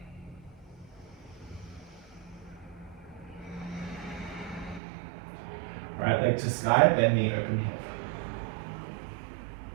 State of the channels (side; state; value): left; drops out; at 4.8 s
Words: Right leg to sky, bend knee, open hip.